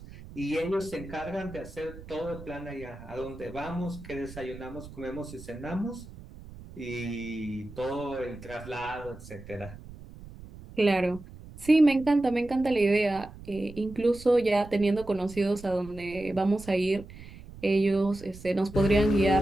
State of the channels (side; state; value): right; noise; rumble, 16 dB below the sound